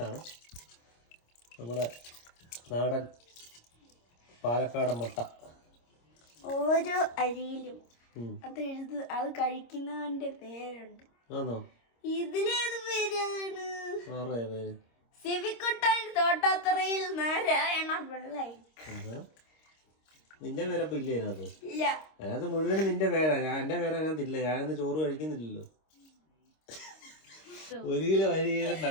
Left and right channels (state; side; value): late; right; 26 ms